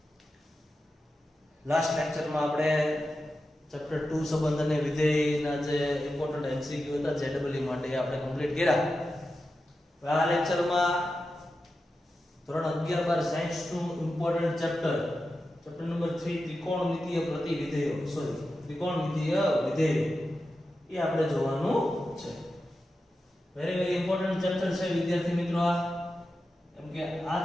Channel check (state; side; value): normal; both; correlation 0.91